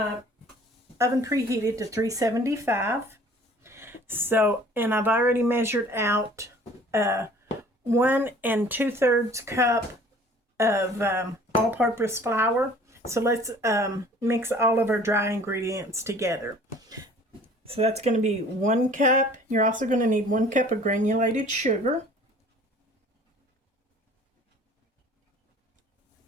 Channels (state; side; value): normal; both; correlation 0.50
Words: oven preheated to 375. And I've already measured out 1 2/3 cup of all-purpose flour. So let's mix all of our dry ingredients together. So that's going to be 1 cup. You're also going to need 1 cup of granulated sugar.